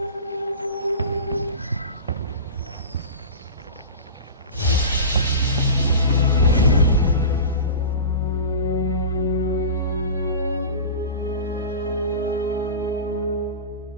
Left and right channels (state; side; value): inverted; both; correlation -0.31